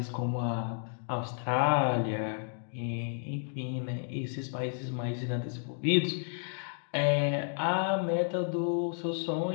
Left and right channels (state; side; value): silent; right; digital silence